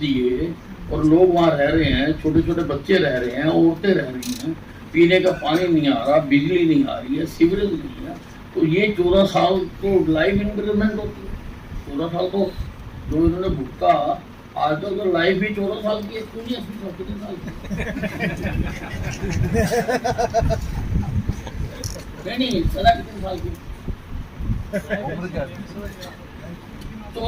दिए और लोग वहाँ रह रहे हैं, छोटे छोटे बच्चे रह रहे हैं, औरतें रह रही हैं, पीने का पानी नहीं आ रहा, बिजली नहीं आ रही है, सीवरेज नहीं है, तो ये 14 साल तो लाइफ इंक्रीमेंट होती है। 14 साल तो जो इन्होंने भुगता, आजकल तो लाइफ भी 14 साल की है, क्यों नहीं 80 साल की? नहीं सदा कितने साल की?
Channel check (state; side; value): identical; both; correlation 1.00